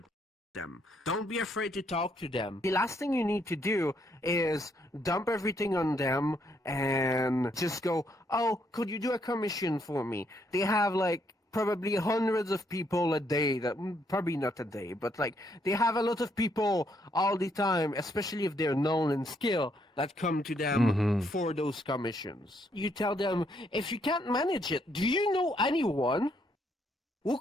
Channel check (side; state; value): both; normal; correlation 0.73